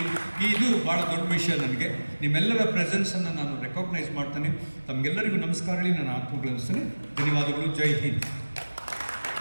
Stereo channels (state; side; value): inverted; both; correlation -1.00